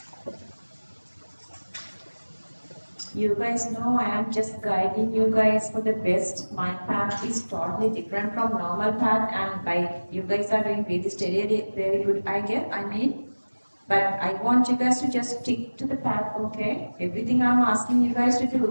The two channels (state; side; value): inverted; both; correlation -1.00